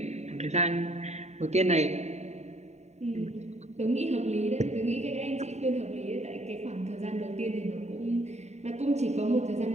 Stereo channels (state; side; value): late; left; 0.32 ms